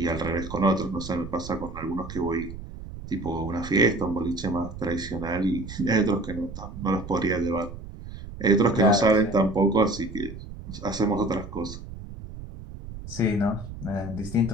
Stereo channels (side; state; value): right; noise; rumble, 12 dB below the sound